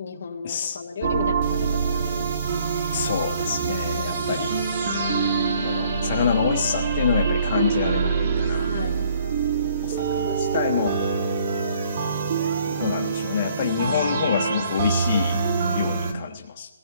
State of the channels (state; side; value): inverted; both; correlation -0.62